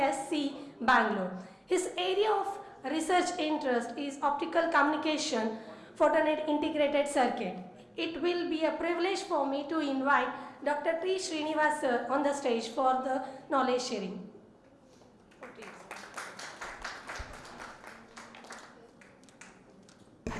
Bangalore. His area of research interest is optical communication photonic integrated circuit. It will be a privilege for me to invite Dr. T. Srinivas sir on the stage for the knowledge sharing.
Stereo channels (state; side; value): identical; both; correlation 1.00